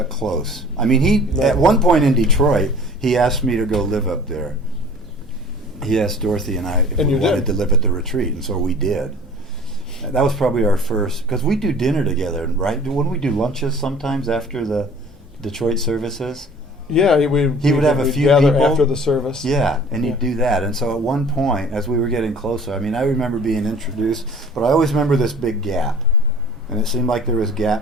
close. I mean, at one point in Detroit, he asked me to go live up there. He asked Dorothy and I if we wanted to live at the retreat, and so we did. That was probably our first, because we do dinner together, right? Wouldn't we do lunches sometimes after the Detroit services? Yeah, He would have a few gather people after the service. Yeah, and he'd do that. And so at one point, as we were getting closer, I mean, I remember being introduced, but I always remember this big gap. And it seemed like there was a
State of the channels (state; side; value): normal; both; correlation 0.47